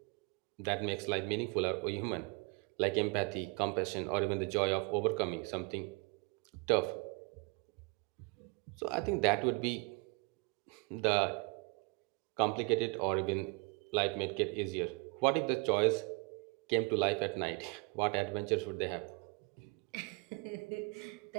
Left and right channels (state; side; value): quieter; left; 30.5 dB